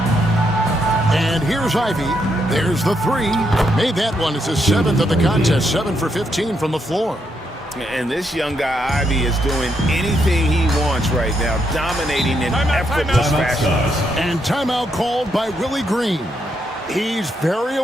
And here's Ivy. There's the 3. Made that one. It's his 7th of the contest. 7 for 15 from the floor. And this young guy, Ivy, is doing anything he wants right now, dominating in effortless fashion. And timeout called by Willie Green. He's very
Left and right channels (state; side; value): normal; both; correlation 0.78